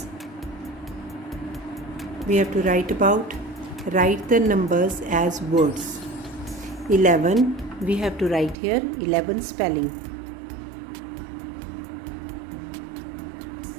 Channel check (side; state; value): left; drops out; at 8.6 s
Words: we have to write the numbers as words. 11 we have to write here 11 spelling.